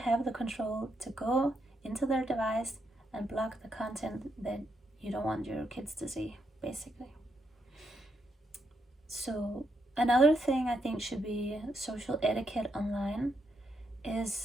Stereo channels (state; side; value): normal; both; correlation 0.79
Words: the control to go into their device and block the content that you don't want your kids to see, basically. So another thing I think should be social etiquette online